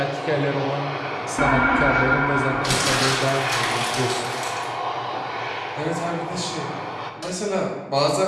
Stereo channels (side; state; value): both; identical; correlation 1.00